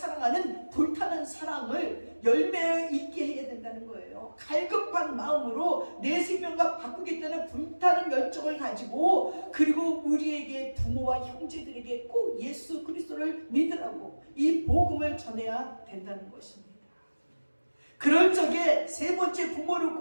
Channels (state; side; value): inverted; both; correlation -1.00